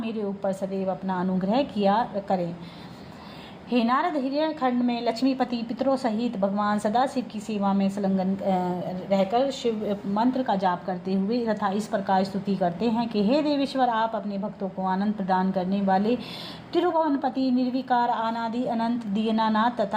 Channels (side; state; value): both; identical; correlation 1.00